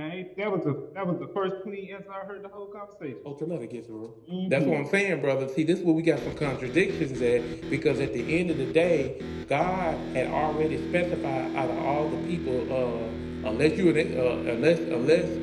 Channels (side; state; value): both; identical; correlation 1.00